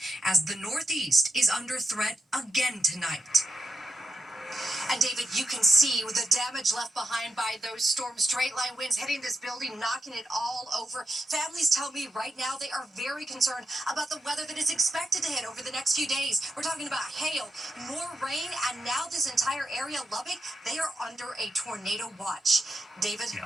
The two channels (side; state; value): both; normal; correlation 0.84